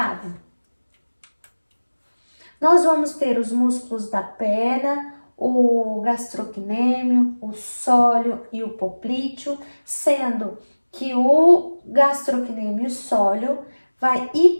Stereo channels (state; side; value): inverted; both; correlation -1.00